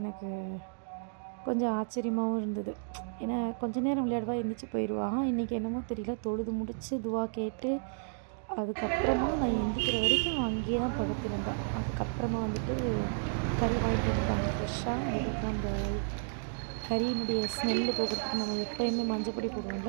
எனக்கு கொஞ்சம் ஆச்சரியமாகவும் இருந்தது. ஏன்னா கொஞ்ச நேரம் விளையாடுவா, எந்திரிச்சு போயிடுவா. இன்றைக்கி என்னமோ தெரியல, தொழுது முடித்து துவா கேட்டு அதுக்கப்புறமா நான் எந்திரிக்கிற வரைக்கும் அங்கேயே தான் படுத்திருந்தா. அதுக்கப்புறமா வந்துட்டு கறி வாங்கிட்டு வந்துட்டாங்க ஃப்ரெஷ்ஷாக. அதுக்கப்புறம் அந்த கறியினுடைய ஸ்மெல்லு போகிறதுக்கு நம்ம எப்போயுமே மஞ்சப்பொடி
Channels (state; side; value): silent; left; digital silence